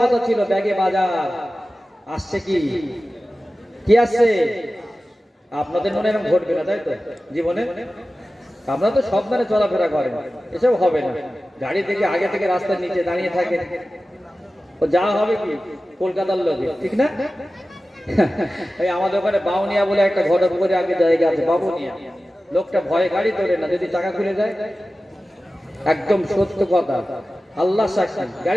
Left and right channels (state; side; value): normal; both; correlation 0.95